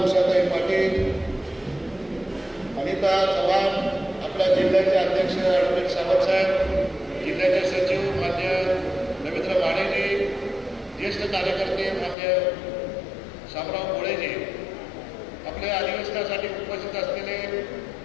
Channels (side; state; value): right; drops out; at 12.2 s